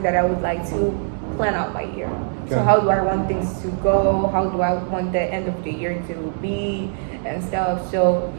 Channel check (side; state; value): left; silent; digital silence